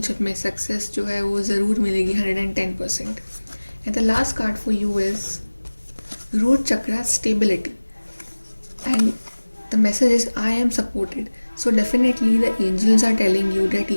में सक्सेस जो है वो ज़रूर मिलेगी 110%. And the last card for you is root chakra stability. And the message is I am supported. So definitely the angels are telling you that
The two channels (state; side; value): inverted; both; correlation -1.00